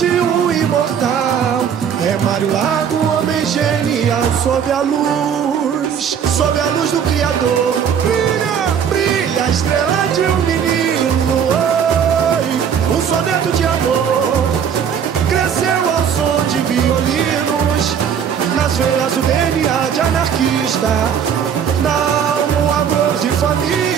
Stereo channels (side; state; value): left; quieter; 7.9 dB